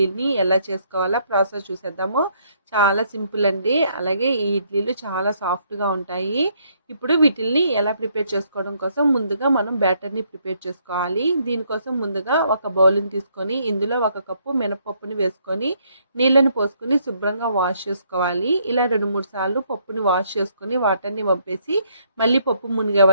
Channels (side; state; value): both; inverted; correlation -0.70